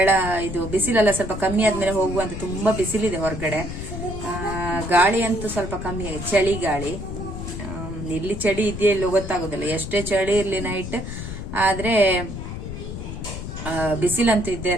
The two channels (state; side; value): noise; left; rumble, 7 dB below the sound